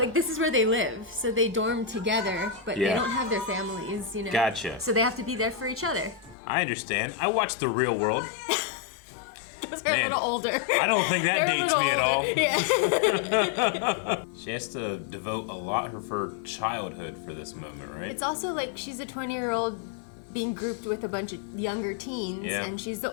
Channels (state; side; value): drops out; right; at 6.4 s